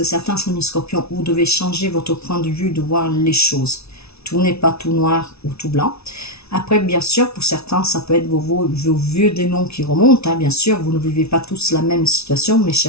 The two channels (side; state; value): right; late; 0.80 ms